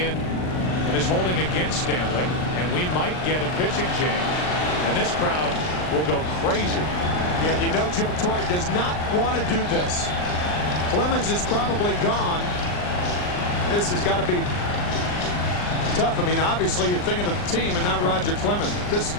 and is holding against Stanley, and we might get a pitching change, and this crowd will go crazy. Yeah, you know Joe Torre does not want to do this. Clemens is probably gone. This has got to be tough. I mean, obviously you're thinking of the team and not Roger Clemens. This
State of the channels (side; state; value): right; late; 39 ms